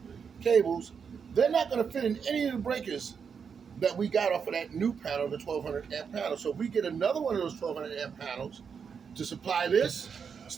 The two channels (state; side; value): quieter; left; 6.5 dB